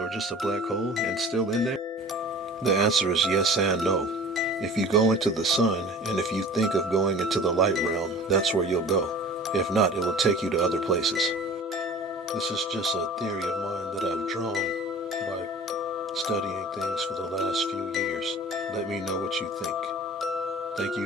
just a black hole and still in there? The answer is yes and no. If you go into the sun and if you think of going into the light realm, that's where you'll go. If not, it will take you to other places. This is just a theory of mine that I've drawn by studying things for the last few years. Let me know what you think. Thank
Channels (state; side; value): normal; both; correlation 0.42